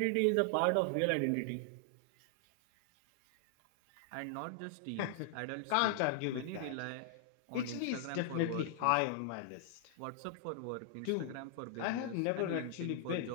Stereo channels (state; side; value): different; both; correlation 0.00